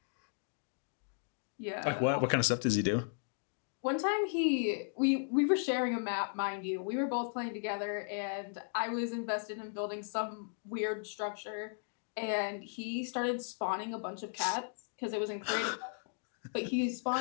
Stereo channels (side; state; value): right; silent; digital silence